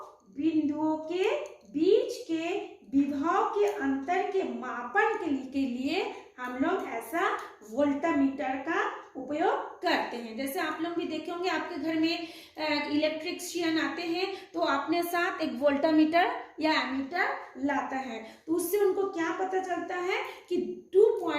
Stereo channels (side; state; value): both; identical; correlation 1.00